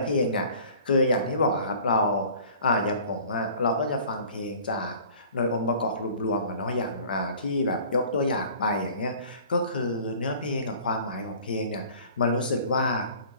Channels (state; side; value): inverted; both; correlation -0.48